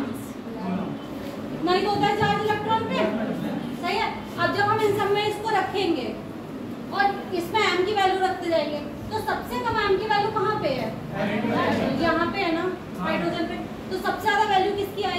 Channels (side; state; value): both; identical; correlation 1.00